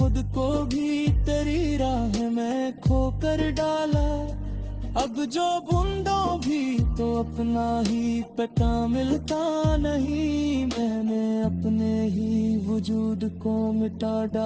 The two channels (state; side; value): identical; both; correlation 1.00